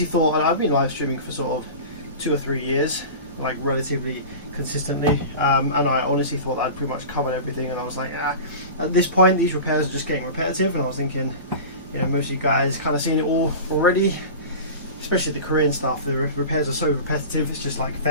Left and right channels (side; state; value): both; inverted; correlation -0.32